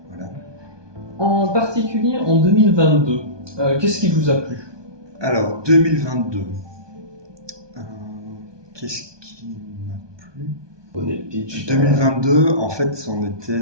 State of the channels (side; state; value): left; late; 1.2 ms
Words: voilà. En particulier en 2022, qu'est-ce qui vous a plu? Alors 2022, qu'est-ce qui m'a plu? 2022, en fait, on était,